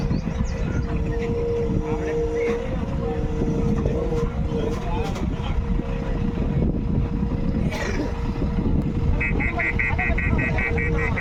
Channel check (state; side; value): identical; both; correlation 1.00